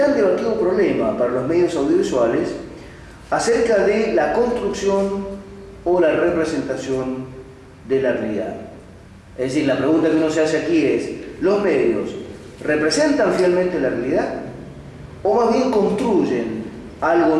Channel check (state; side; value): identical; both; correlation 1.00